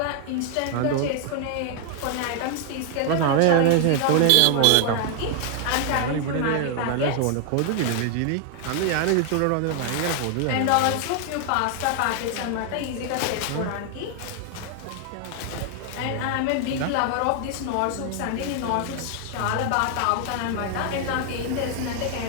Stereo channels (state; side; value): different; both; correlation 0.00